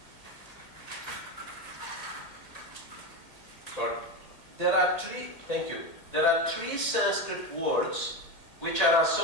Sorry. Thank you. There are three Sanskrit words which are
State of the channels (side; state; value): right; late; 1.9 ms